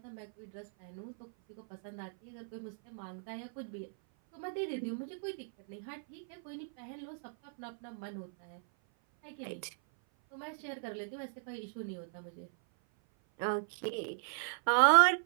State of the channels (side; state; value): left; silent; 53 dB below the other